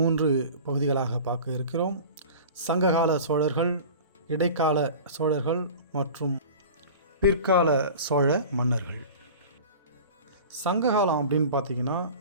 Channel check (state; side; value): inverted; both; correlation -0.38